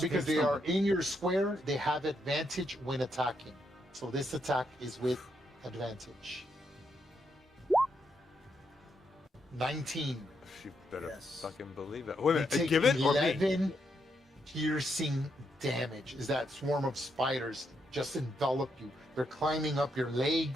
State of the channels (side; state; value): both; normal; correlation 0.79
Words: because keep they are stomping. in your square, they have advantage when attacking. So this attack is with advantage. 19. She better Yes. fucking believe it. Wait a You minute. take Give it or me? 11 piercing damage. Is that swarm of spiders just envelop you? They're climbing up your